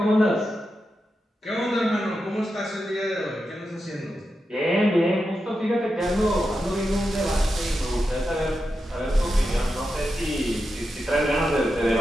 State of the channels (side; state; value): both; normal; correlation 0.88